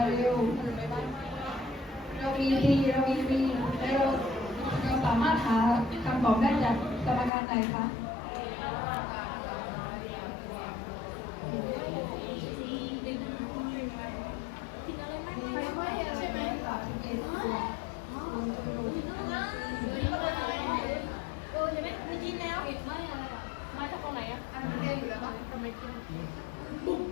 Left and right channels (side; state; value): right; drops out; at 7.3 s